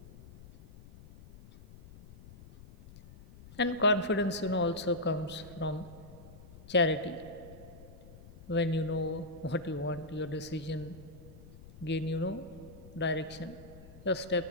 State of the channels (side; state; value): left; noise; rumble, 18 dB below the sound